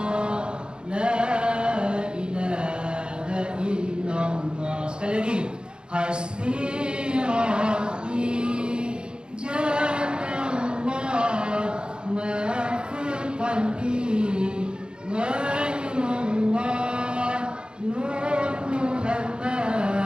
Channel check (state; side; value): late; left; 0.050 ms